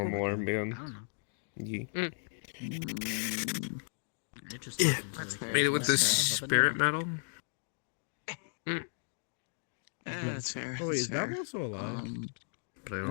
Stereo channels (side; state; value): right; silent; digital silence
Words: army on. Yeah. Made it with this spirit metal. That's fair. Oh wait, is that's that fair. one still alive? But I